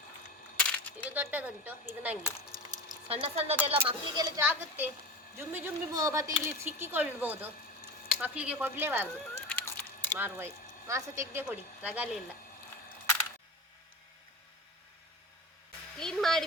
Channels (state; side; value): normal; both; correlation 0.29